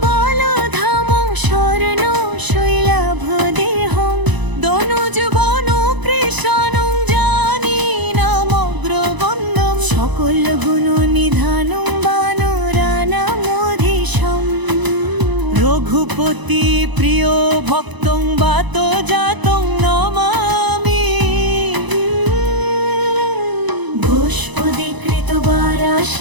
বল ধাম স্বর্ণ শৈলাভ দেহম, দনুজ বন কৃষাণং জানি নামগ্রবন্দম। সকল গুণ নিধানম বানরানামধীশম, রঘুপতি প্রিয় ভক্তং বাত জাতং নমামি। পুষ্পদীকৃত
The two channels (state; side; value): late; left; 1.0 ms